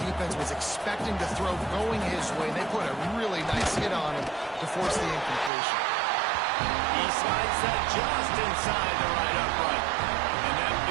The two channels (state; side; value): drops out; left; at 5.5 s